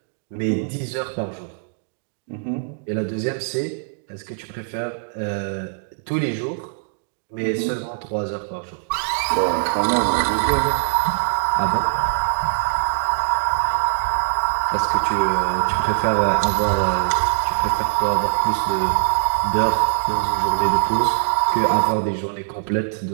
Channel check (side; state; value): left; silent; digital silence